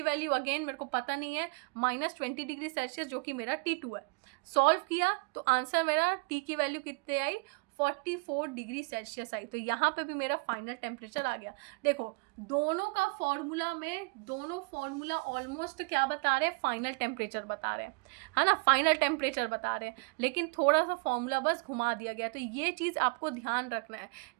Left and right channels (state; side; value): quieter; left; 30.7 dB